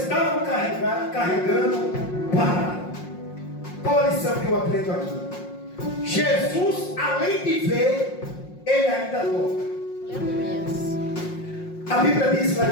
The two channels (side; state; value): right; late; 5.6 ms